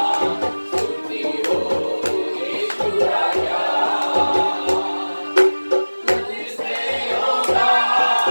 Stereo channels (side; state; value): both; inverted; correlation -1.00